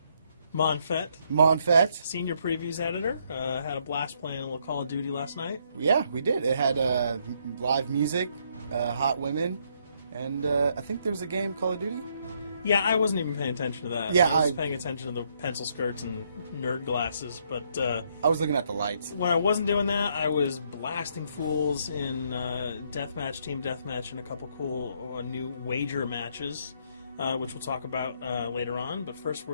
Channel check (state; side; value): inverted; both; correlation -0.72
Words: Monfett, Senior Previews Editor. Had a blast playing a little Call of Duty last night. Yeah, we did. It had live music, hot women, and I think there was a game, Call of Duty? Yeah, I wasn't even paying attention to that. Yeah, I was paying attention to the pencil skirts and nerd glasses, but I was looking at the lights. When I wasn't doing that, I was blasting fools in deathmatch, team deathmatch, and a couple cool new wager matches, which we'll talk about later on. But first,